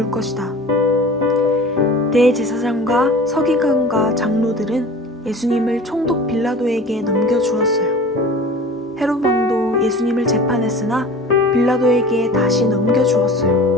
것이다. 대제사장과 서기관과 장로들은 예수님을 총독 빌라도에게 넘겨주었어요. 헤롯 왕도 예수님을 재판했으나 빌라도에게 다시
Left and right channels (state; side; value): normal; both; correlation 0.39